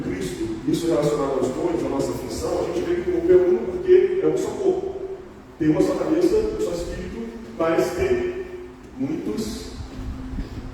isso relacionado aos dons, à nossa função, a gente vê que o corpo é uno porque é um só corpo. Tem uma só cabeça, um só espírito, mas tem muitos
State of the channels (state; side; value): identical; both; correlation 1.00